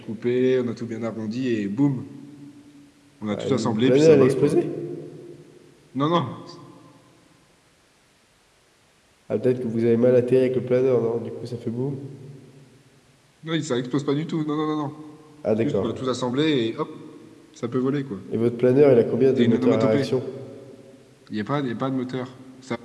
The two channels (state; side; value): identical; both; correlation 1.00